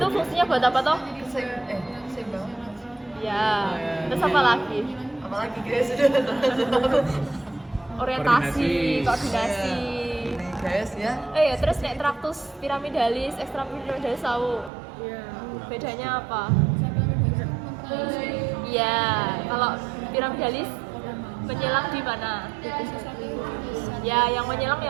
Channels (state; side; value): drops out; left; at 14.7 s